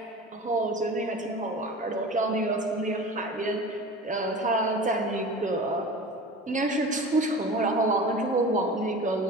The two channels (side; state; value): both; normal; correlation 0.36